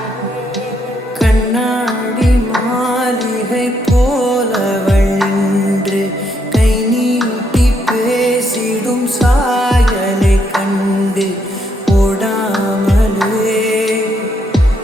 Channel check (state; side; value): normal; both; correlation 0.75